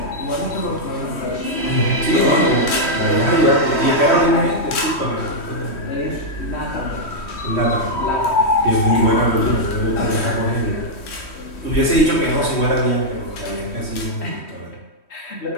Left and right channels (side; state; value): right; late; 3.1 ms